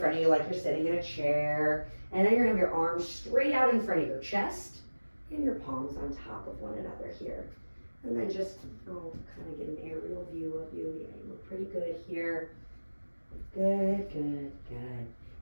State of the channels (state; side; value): inverted; both; correlation -1.00